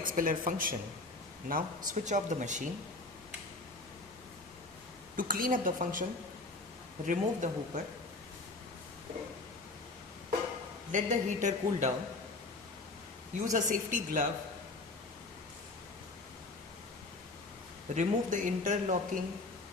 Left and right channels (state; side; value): quieter; right; 3.2 dB